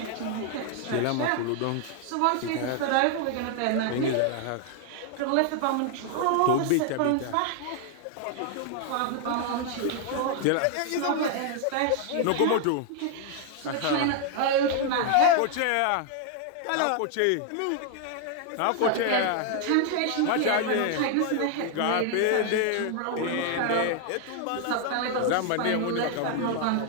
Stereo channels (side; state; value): both; different; correlation 0.00